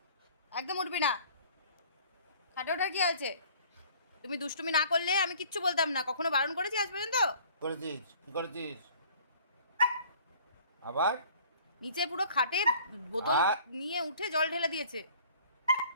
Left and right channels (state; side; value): inverted; both; correlation -0.52